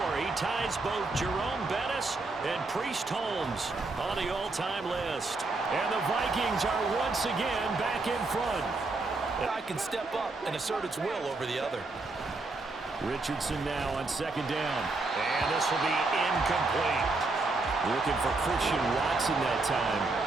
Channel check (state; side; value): quieter; left; 3.4 dB